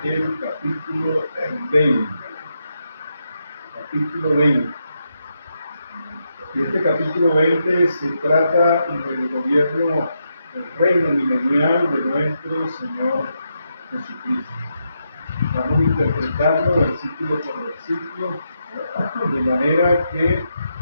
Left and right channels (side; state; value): both; inverted; correlation -0.83